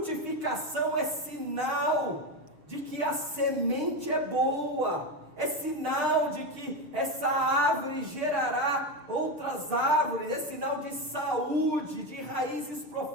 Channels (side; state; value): left; late; 6.4 ms